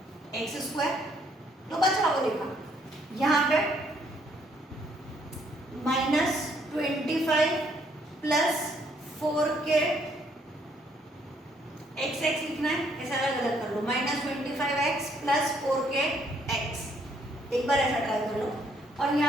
x square, तो बचा वो लिखा। यहाँ पे minus 25 plus 4k x x लिखना है, ऐसा अलग अलग कर लो, minus 25x plus 4k x, एक बार ऐसा ट्राई कर लो। और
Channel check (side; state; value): both; normal; correlation 0.68